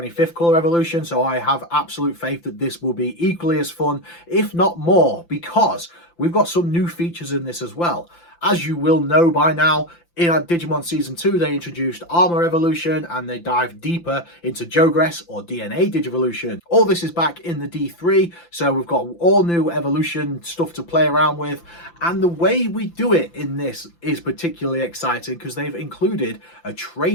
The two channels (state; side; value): late; right; 5.9 ms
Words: Color Evolution, so I have absolute faith that this will be equally as fun, if not more, because we've got some new features in this as well. As you will know by now, in Digimon Season 2, they introduced Armor Evolution, and they dived deeper into Jogress or DNA Digivolution. All this is back in the D3, so we've got all new evolution stuff to play around with, and the way we do it in this is particularly exciting because they've included a